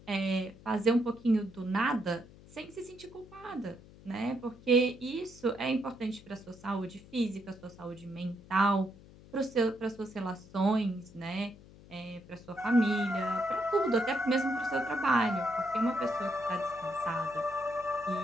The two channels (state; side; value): noise; left; hum, 21 dB below the sound